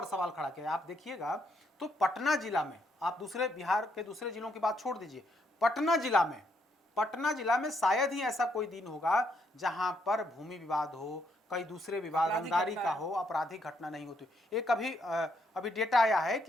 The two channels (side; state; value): both; normal; correlation 0.74